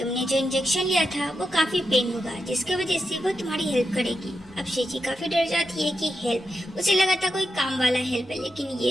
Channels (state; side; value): normal; both; correlation 0.87